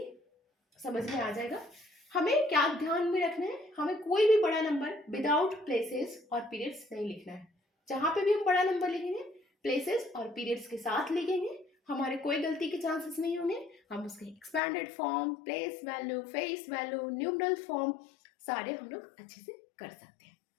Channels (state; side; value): drops out; right; at 14.6 s